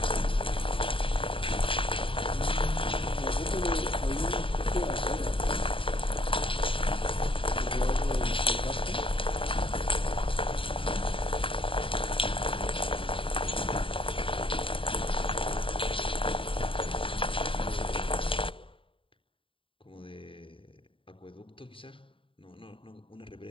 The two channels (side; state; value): right; late; 0.25 ms